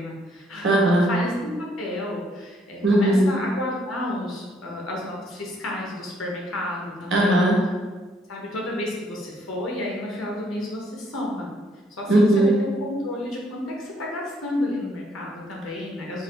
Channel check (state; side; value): normal; both; correlation 0.69